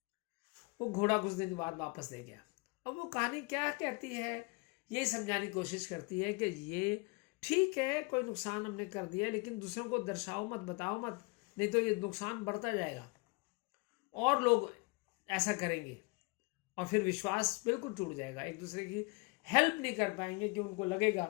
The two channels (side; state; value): right; quieter; 28.3 dB